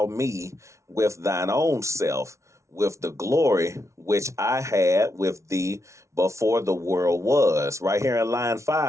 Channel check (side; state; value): left; late; 0.14 ms